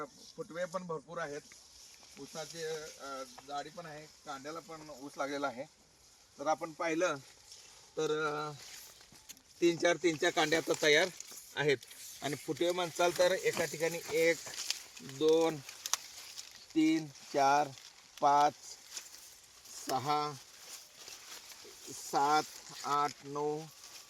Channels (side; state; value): both; identical; correlation 1.00